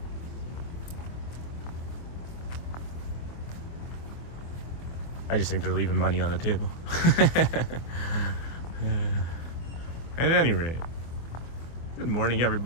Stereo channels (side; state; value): right; late; 25 ms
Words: I just think they're leaving money on the table. At any rate, good morning,